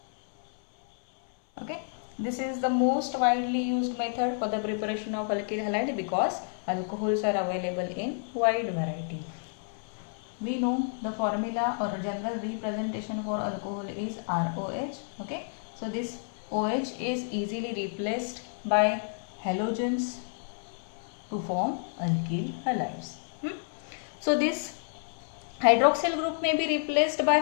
Okay, this is the most widely used method for the preparation of alkyl halide because alcohols are available in wide variety. We know the formula or general representation for alcohol is ROH. Okay, so this OH is easily replaced by halogens to form alkyl halides. So this hydroxyl group may be replaced by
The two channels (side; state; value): right; silent; 58 dB below the other